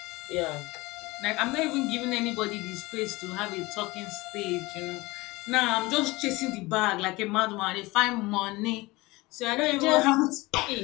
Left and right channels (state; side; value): quieter; right; 21.8 dB